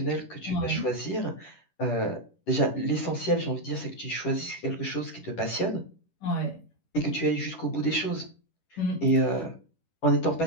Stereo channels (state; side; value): late; right; 10 ms